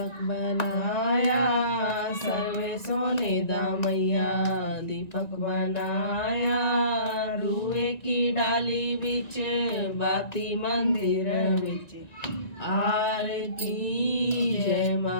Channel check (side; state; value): right; late; 1.9 ms